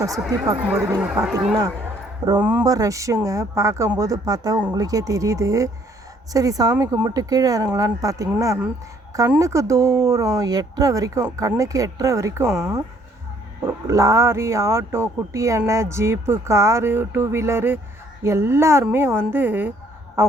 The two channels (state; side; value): normal; both; correlation 0.63